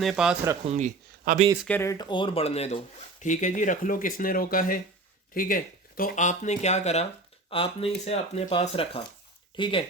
पास रखूँगी, अभी इसके रेट और बढ़ने दो। ठीक है जी, रख लो, किसने रोका है, ठीक है। तो आपने क्या करा, आपने इसे अपने पास रखा, ठीक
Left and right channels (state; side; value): quieter; left; 3.1 dB